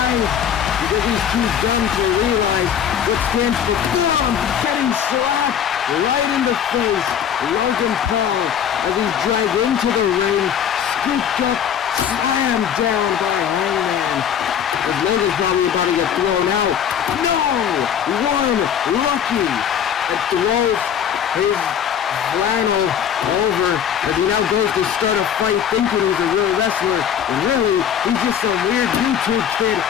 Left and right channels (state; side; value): quieter; right; 8.7 dB